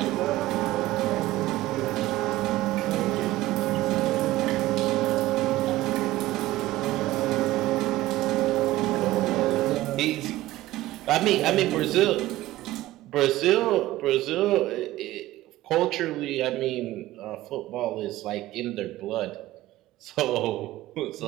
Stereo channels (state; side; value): quieter; left; 16.5 dB